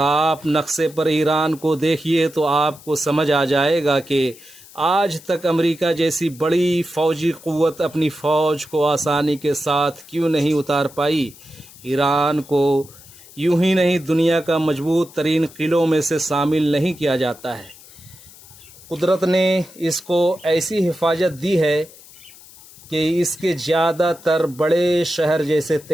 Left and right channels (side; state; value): left; noise; hiss, 21 dB below the sound